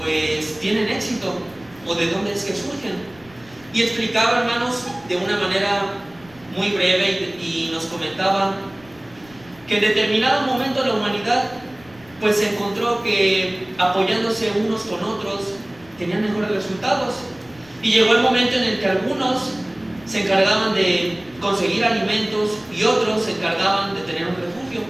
tienen éxito o de dónde es que surgen. Y explicaba, hermanos, de una manera muy breve y nos comentaba que en determinado momento la humanidad pues se encontró que apoyándose unos con otros tenían mejores resultados. Y llegó el momento en el que algunos se encargaban de conseguir alimentos y otros se encargaban de tener un refugio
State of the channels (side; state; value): left; noise; rumble, 25 dB below the sound